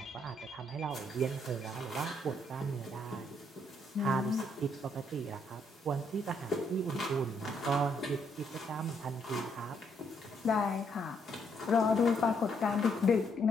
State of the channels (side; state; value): both; normal; correlation 0.73